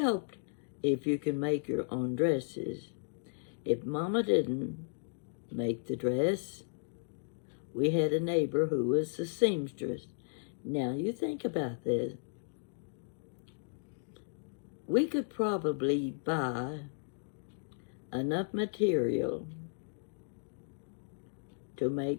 if you can make your own dresses. If Mama didn't make the dress, we had a neighbor who was a seamstress. Now you think about this. We could probably buy enough material to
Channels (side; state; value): right; silent; digital silence